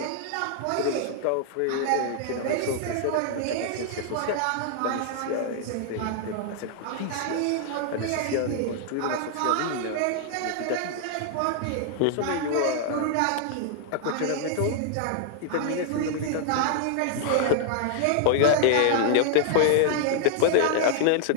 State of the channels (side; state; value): both; different; correlation 0.00